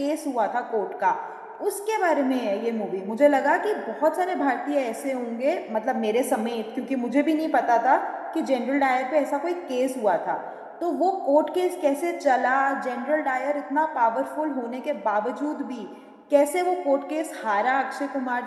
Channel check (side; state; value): both; identical; correlation 1.00